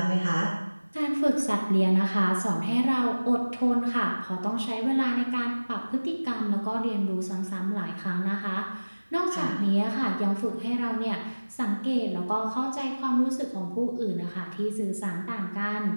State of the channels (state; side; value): inverted; both; correlation -1.00